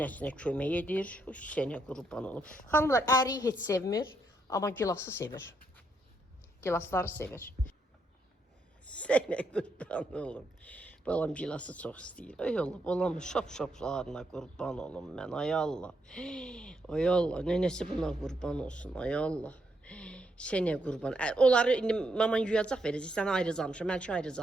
kömək edir. Sənə qurban olum. Xanımlar, əriyi heç sevmir, amma gilası sevir. Gilasları sevir. Sənə qurban olum. Balam gilası çox istəyir. Ay Allah, balamın şap-şaplarına qurban olum mən. Ay Allah. Ay Allah, nənəsi buna qurban olsun. Ay Allah. Sənə qurban. Onları indi mama yuyacaq verəcək. Sənə ayrıc almışam, Məlki ayrıc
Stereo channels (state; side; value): normal; both; correlation 0.78